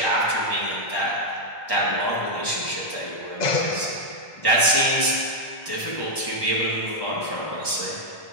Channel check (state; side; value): late; right; 1.1 ms